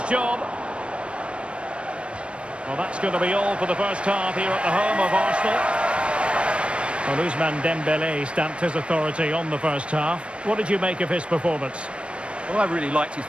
job. Well, that's going to be all for the first half here at the home of Arsenal. Well, Ousmane Dembele stamped his authority on the first half. What did you make of his performance? Well, I really liked his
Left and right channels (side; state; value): left; late; 0.059 ms